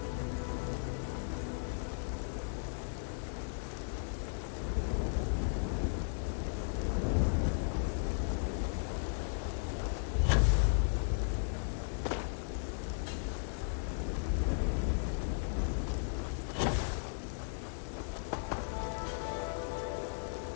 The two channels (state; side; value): silent; right; 54 dB below the other